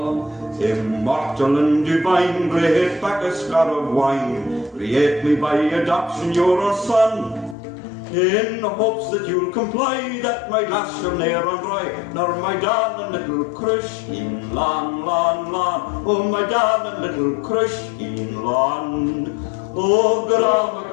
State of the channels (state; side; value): drops out; right; at 7.6 s